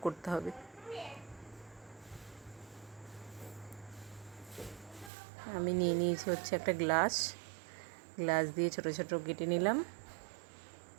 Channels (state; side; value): drops out; left; at 5.1 s